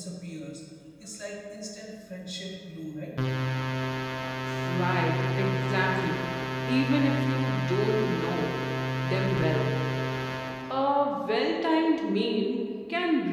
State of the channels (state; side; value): identical; both; correlation 1.00